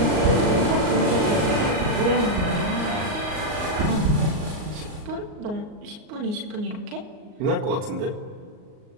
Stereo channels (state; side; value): late; left; 38 ms